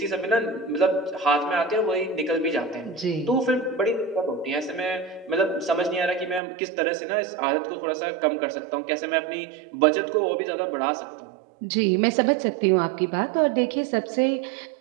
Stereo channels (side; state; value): left; drops out; at 6.4 s